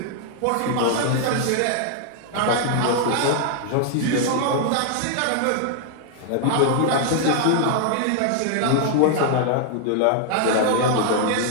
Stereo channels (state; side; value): different; both; correlation -0.01